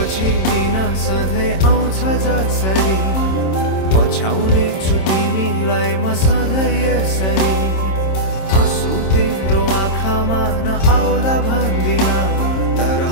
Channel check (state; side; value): late; right; 26 ms